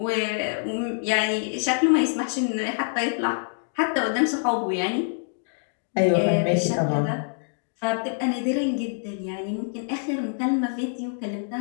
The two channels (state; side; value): silent; right; digital silence